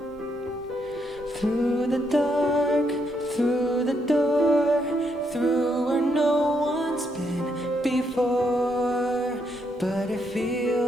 Through the dark, through the door, through where no one's been before, but it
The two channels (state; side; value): normal; both; correlation 0.76